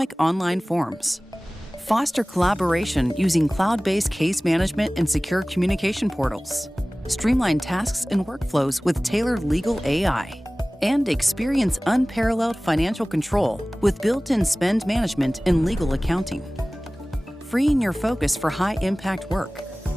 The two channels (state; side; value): normal; both; correlation 0.98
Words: online forms. Foster collaboration using cloud-based case management and secure communication portals. Streamline tasks and workflows with tailored legal AI. And experience unparalleled financial control with built-in spend management and legal accounting. Freeing your focus for high-impact work,